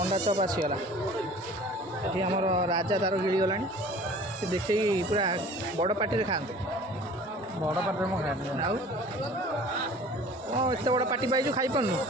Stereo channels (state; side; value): normal; both; correlation 0.46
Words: चॉप आसीगला ये आम राजा तार गिड़ी गला देखे पूरा बड़ पार्टी खाते ବଡ଼ ପାଟିରେ ମୁଁ ଖାଏନି। आउ एत बड़ पार्टी पाइଛୁ खाई पारनु